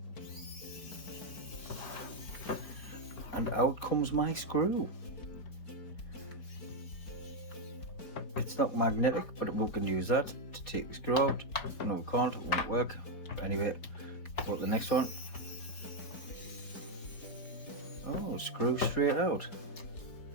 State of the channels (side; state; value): right; late; 4.2 ms